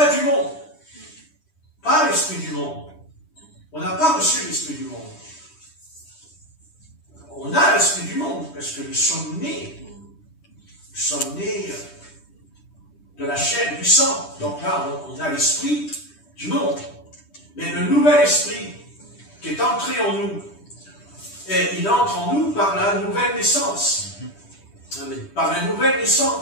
du monde. Pas l'Esprit du monde. On n'a pas reçu l'Esprit du monde. On a l'Esprit du monde, parce que nous sommes nés de la chair et du sang. Donc là, on a l'Esprit du monde. Mais le nouvel Esprit qui est entré en nous, et il entre en nous par la nouvelle naissance. Amen. Par la nouvelle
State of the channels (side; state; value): right; late; 10 ms